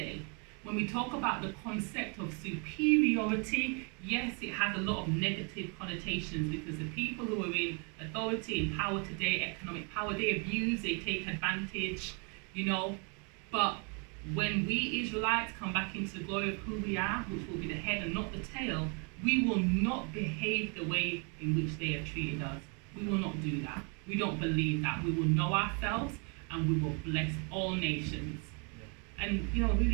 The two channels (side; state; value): left; quieter; 35.8 dB